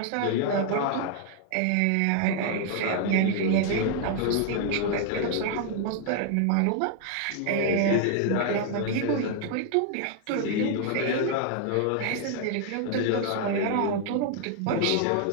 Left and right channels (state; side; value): different; both; correlation 0.00